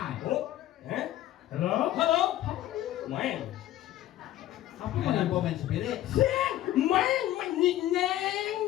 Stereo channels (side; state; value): right; quieter; 13.7 dB